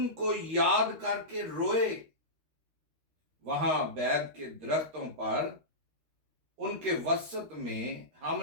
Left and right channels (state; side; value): late; left; 13 ms